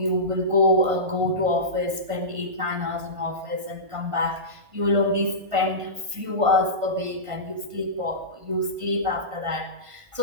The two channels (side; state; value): left; late; 1.5 ms